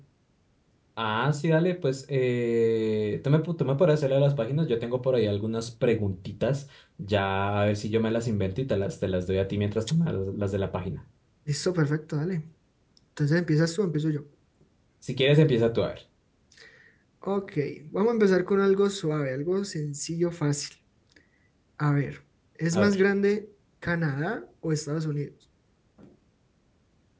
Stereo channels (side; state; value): both; identical; correlation 1.00